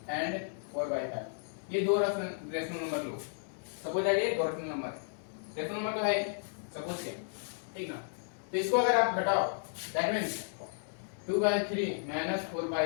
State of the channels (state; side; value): silent; right; digital silence